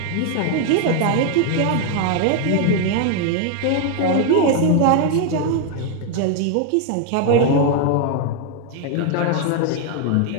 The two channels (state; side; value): different; both; correlation 0.00